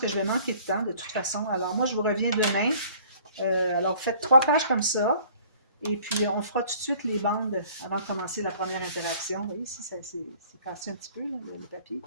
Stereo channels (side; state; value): both; inverted; correlation -0.53